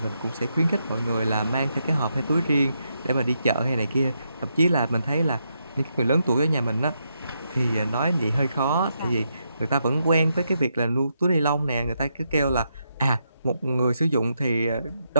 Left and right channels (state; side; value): inverted; both; correlation -0.81